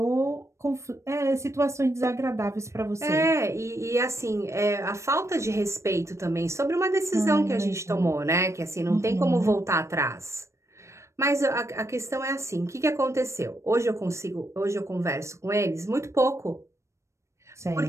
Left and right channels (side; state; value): left; late; 0.14 ms